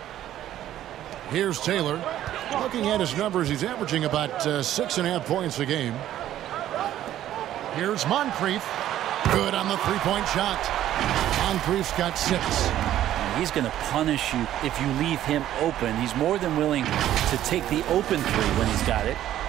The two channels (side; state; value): left; quieter; 12.4 dB